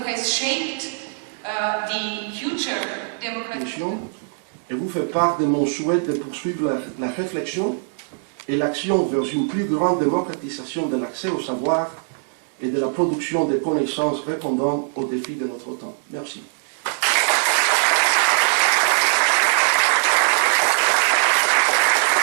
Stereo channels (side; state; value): left; silent; digital silence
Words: has shaped the future democratic. Et vous fait part de mon souhait de poursuivre la réflexion et l'action vers une plus grande démocratisation de l'accès au savoir et de la production de connaissances répondant aux défis de notre temps. Merci.